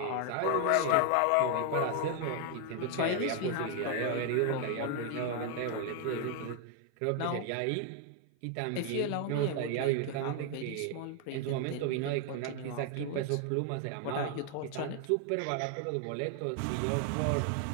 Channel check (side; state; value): both; different; correlation 0.00